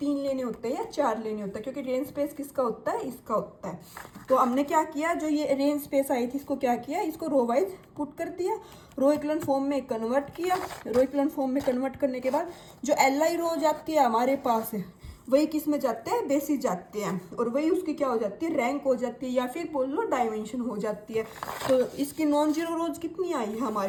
लेने होते हैं या 4 लेने होते हैं, क्योंकि रेंज स्पेस किसका होता है, इसका होता है। तो हमने क्या किया, जो ये रेंज स्पेस आई थी इसको क्या किया, इसको रो वाइज पुट कर दिया, रो इक्वलन फॉर्म में कन्वर्ट किया। रो इक्वलन फॉर्म में कन्वर्ट करने के बाद जो LI रो जाती है हमारे पास वही किस में जाते हैं, बेसिस जाते हैं, और वही उसकी क्या हो जाती है, रैंक हो जाती है, या फिर बोल लो डायमेंशन हो जाती है। तो इसकी नॉन जीरो रोज कितनी आई है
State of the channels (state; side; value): identical; both; correlation 1.00